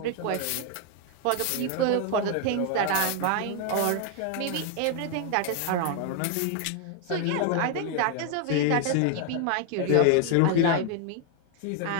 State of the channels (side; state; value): both; different; correlation 0.00